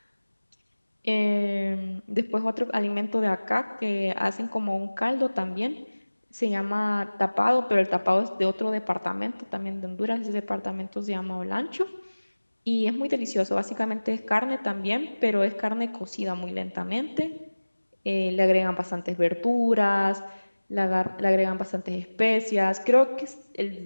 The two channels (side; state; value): both; inverted; correlation -1.00